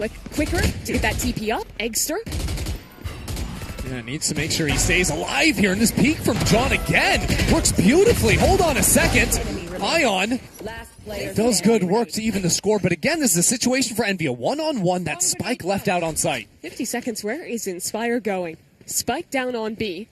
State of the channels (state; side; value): identical; both; correlation 1.00